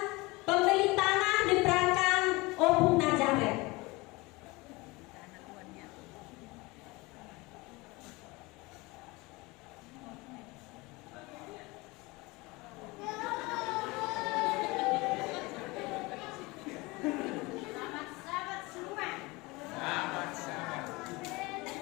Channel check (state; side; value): quieter; right; 23.6 dB